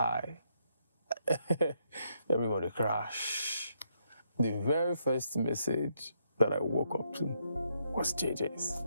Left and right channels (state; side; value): inverted; both; correlation -0.76